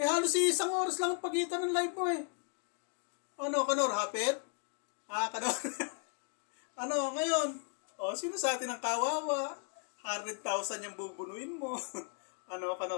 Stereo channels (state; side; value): quieter; right; 39.0 dB